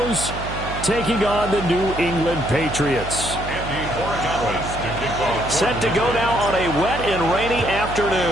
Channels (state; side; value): noise; right; hum, 8 dB below the sound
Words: taking on the New England Patriots. Set to go now on a wet and rainy